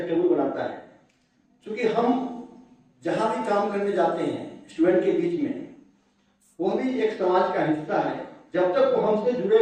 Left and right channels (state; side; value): identical; both; correlation 1.00